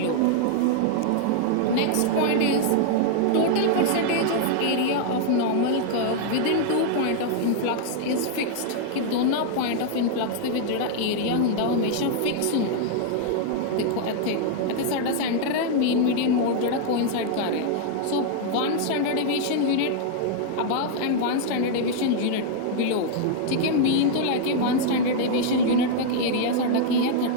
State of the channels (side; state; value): both; different; correlation -0.01